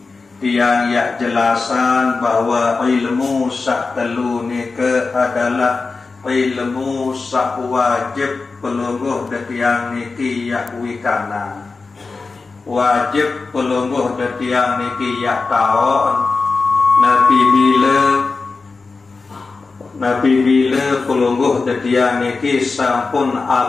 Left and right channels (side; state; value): right; quieter; 4.1 dB